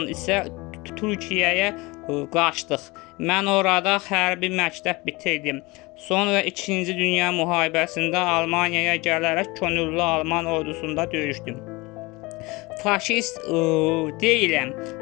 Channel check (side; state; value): right; quieter; 23.8 dB